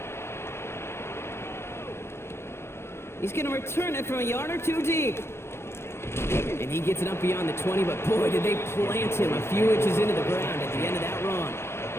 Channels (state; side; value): late; right; 0.12 ms